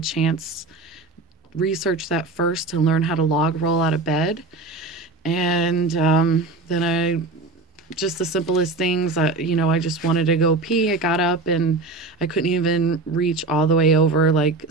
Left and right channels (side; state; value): left; quieter; 3.4 dB